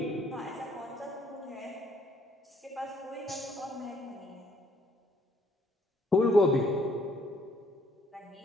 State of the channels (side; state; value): both; normal; correlation 0.65